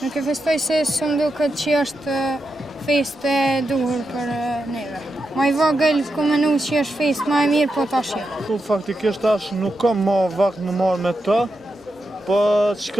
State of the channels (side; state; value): both; normal; correlation 0.87